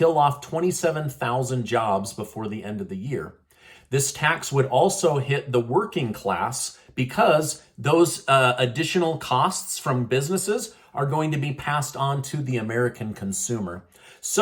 off 27,000 jobs before the end of the year. This tax would also hit the working class because those additional costs from businesses are going to be passed on to the American consumer.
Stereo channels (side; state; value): both; identical; correlation 1.00